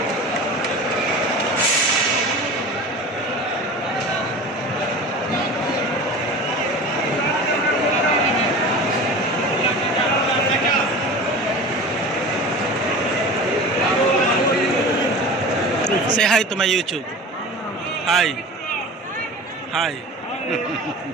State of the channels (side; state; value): both; normal; correlation 0.35